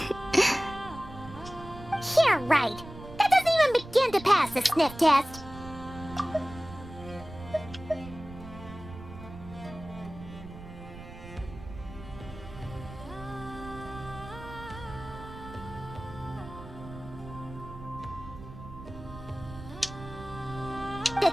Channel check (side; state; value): right; noise; rumble, 14 dB below the sound